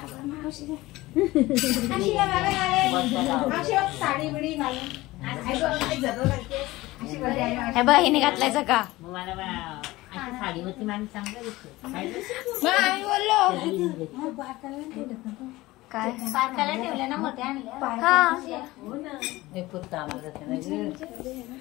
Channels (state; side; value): quieter; right; 19.0 dB